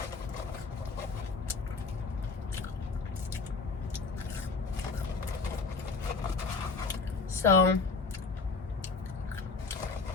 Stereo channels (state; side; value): quieter; right; 4.3 dB